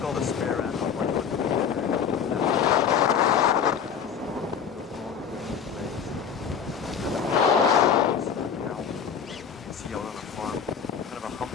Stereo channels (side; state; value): right; quieter; 7.3 dB